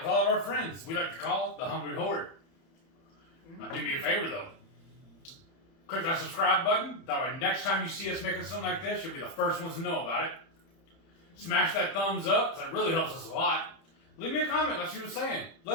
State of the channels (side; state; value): right; late; 30 ms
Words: with all of our friends. We like to call it the Hungry Horde. Now do me a favor though. Click that subscribe button. That way next time you see us making something like this, you'll be the first ones to know about it. Smash that thumbs up, because that really helps us a lot. Leave me a comment like she was saying.